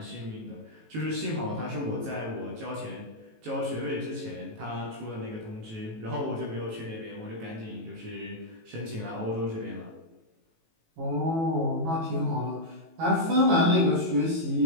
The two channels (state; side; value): late; left; 18 ms